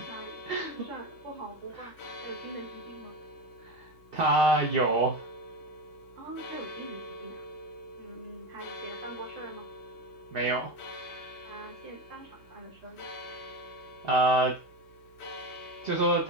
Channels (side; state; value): right; noise; hum, 26 dB below the sound